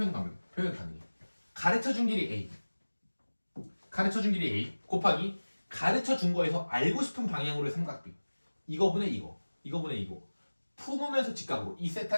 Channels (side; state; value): both; inverted; correlation -1.00